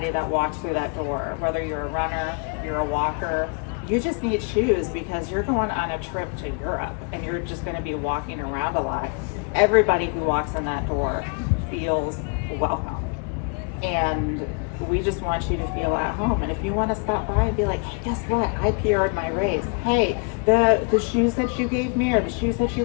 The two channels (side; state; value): right; quieter; 37.2 dB